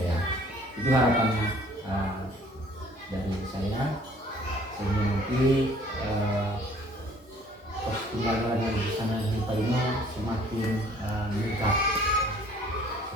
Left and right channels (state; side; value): normal; both; correlation 0.56